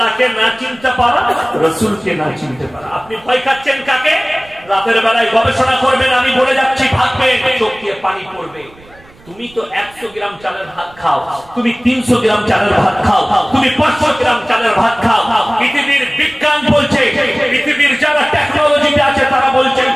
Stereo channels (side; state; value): right; noise; rumble, 25 dB below the sound